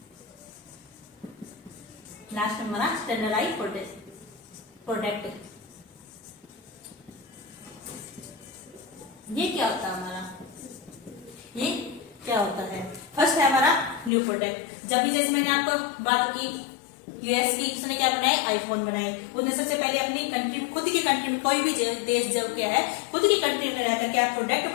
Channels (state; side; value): drops out; right; at 14.1 s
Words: लास्ट में हमारा स्टैंडर्डाइज्ड प्रोडक्ट। ये क्या होता है हमारा, ये क्या होता है, फर्स्ट है हमारा न्यू प्रोडक्ट। जब भी जैसे मैंने आपको बात की यूएस की, उसने क्या बनाए, आईफोन बनाए। उसने सबसे पहले अपनी कंट्री, खुद की कंट्री में, कोई भी देश जब क्या है खुद की कंट्री में रहकर क्या प्रोडक्ट